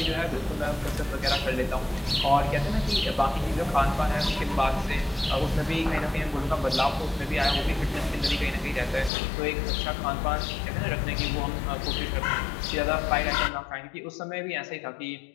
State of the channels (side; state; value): right; drops out; at 9.1 s